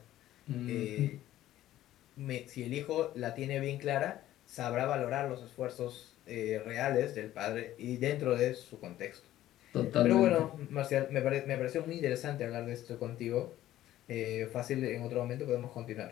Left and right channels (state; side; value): quieter; right; 13.8 dB